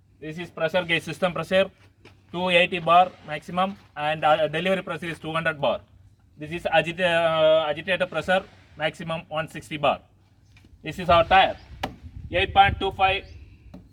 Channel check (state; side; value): identical; both; correlation 1.00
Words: This is pressure gauge, system pressure, 280 bar maximum, and delivery pressure is 200 bar. This is agitator pressure, maximum 160 bar. This is our tire,